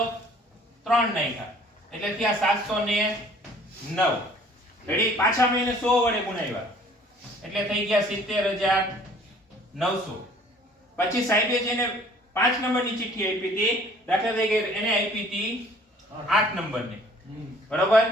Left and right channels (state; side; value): normal; both; correlation 0.54